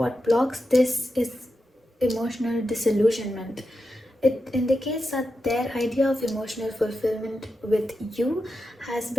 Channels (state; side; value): normal; both; correlation 0.89